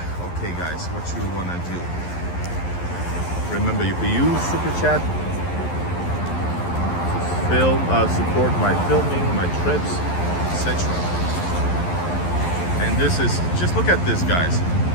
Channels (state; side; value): late; right; 11 ms